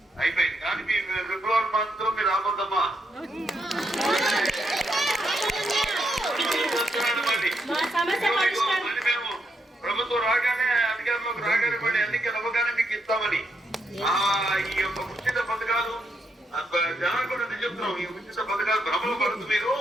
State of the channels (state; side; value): normal; both; correlation 0.80